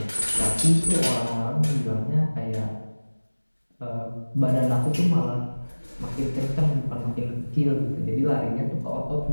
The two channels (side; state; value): both; inverted; correlation -1.00